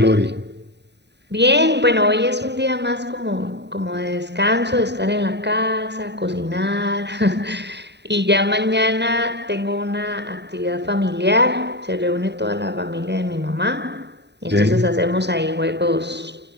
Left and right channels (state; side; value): late; left; 0.50 ms